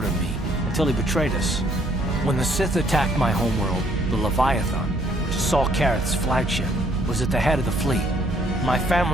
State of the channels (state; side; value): normal; both; correlation 0.65